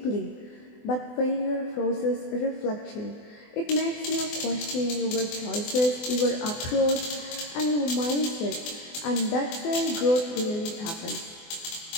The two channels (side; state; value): right; late; 24 ms